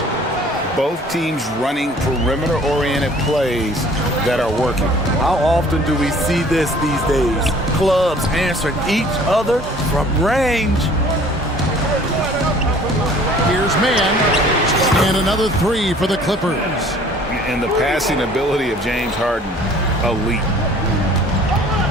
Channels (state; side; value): normal; both; correlation 0.52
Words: Both teams running perimeter-oriented plays that are working. How often do we see this these days? Clubs answering each other from range. Here's man. And another 3 for the Clippers. And the passing ability of James Harden, elite.